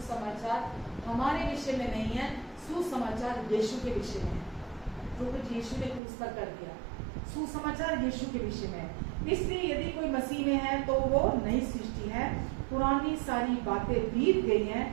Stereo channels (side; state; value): left; drops out; at 6.0 s